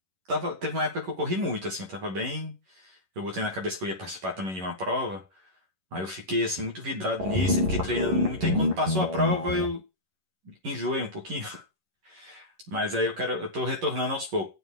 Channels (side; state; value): left; late; 11 ms